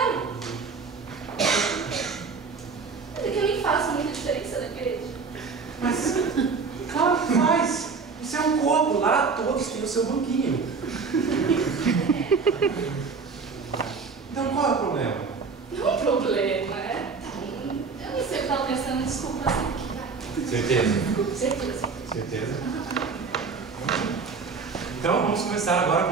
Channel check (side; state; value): left; quieter; 5.0 dB